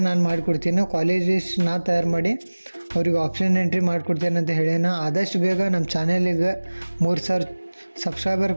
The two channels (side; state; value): both; inverted; correlation -1.00